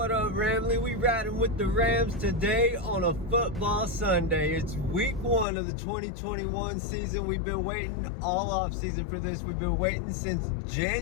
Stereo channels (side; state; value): right; drops out; at 5.5 s